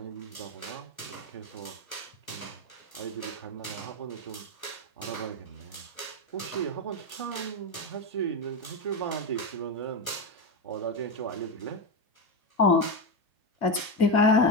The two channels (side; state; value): right; late; 1.2 ms